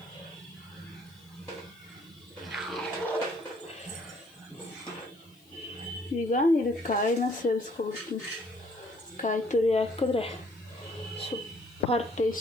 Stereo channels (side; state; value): left; noise; hiss, 29 dB below the sound